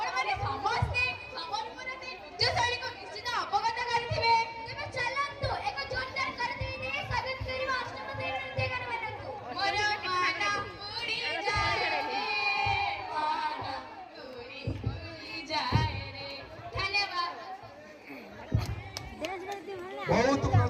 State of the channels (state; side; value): identical; both; correlation 1.00